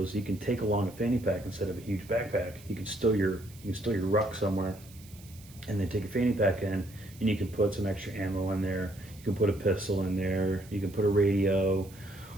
you can take along a fanny pack instead of a huge backpack. You can stow your ruck somewhere, and then take a fanny pack in, and you can put some extra ammo in there. You can put a pistol in there. You can put a radio,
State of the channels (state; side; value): noise; right; hiss, 22 dB below the sound